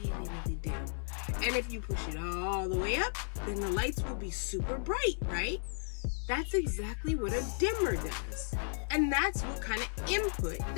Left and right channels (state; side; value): silent; right; 55 dB below the other